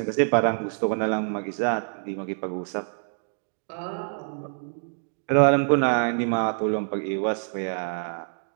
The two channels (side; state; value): left; silent; digital silence